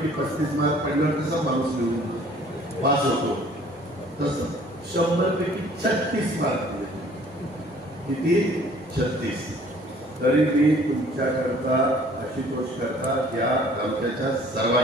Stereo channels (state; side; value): normal; both; correlation 0.55